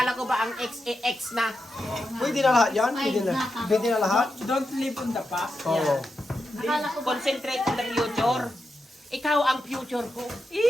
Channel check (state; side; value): normal; both; correlation 0.87